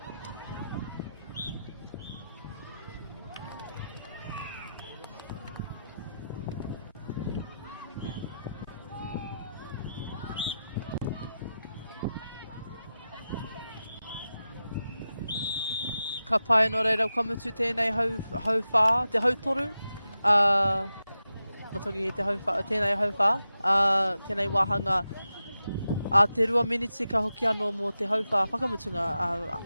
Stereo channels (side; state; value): both; inverted; correlation -0.91